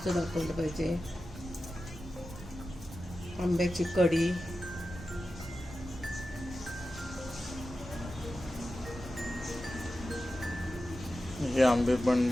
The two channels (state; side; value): noise; right; rumble, 13 dB below the sound